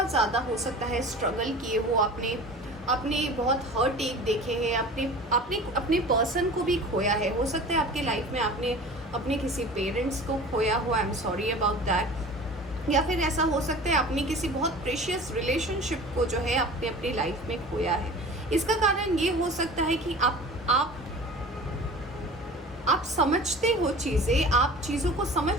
ज़्यादा हो सकता है स्ट्रगल किए हो, आपने बहुत हर्ट एक देखे हैं, अपने पर्सन को भी खोया है। हो सकता है आपके लाइफ में आपने अपने किसी पेरेंट्स को खोया हो, I am sorry about that. या फिर ऐसा हो सकता है आपने किसी बहुत प्रेशियस रिलेशनशिप को जो है आपने अपनी लाइफ में खोया है। इसका कारण ये हो सकता है कि आप समझते हो चीज़ें, आप चीज़ों को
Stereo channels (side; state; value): both; normal; correlation 0.39